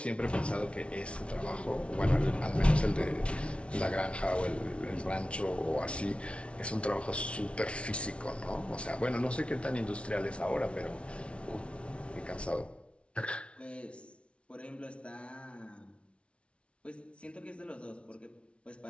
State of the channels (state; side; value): late; right; 0.060 ms